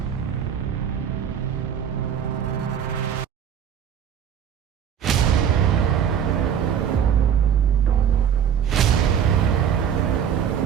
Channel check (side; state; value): left; quieter; 8.5 dB